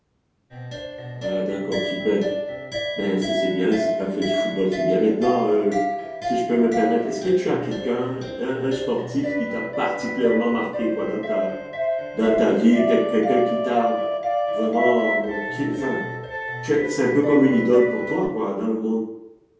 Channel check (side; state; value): both; identical; correlation 1.00